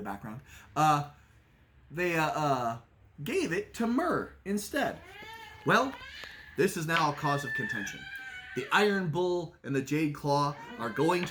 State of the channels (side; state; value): both; identical; correlation 1.00